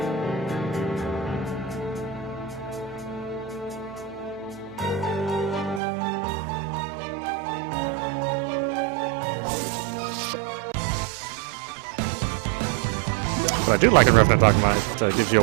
What I do like in Revan Dogma is it gives you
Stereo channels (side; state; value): left; drops out; at 5.8 s